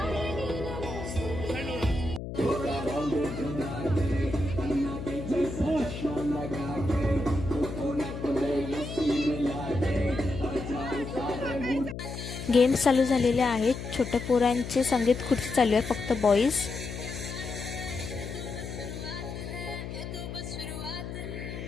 गेम्स चालू झालेले आहेत. छोट्या पोरांचे संगीत खुर्ची चालू आहे, फक्त बॉईज.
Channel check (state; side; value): noise; left; hum, 8 dB below the sound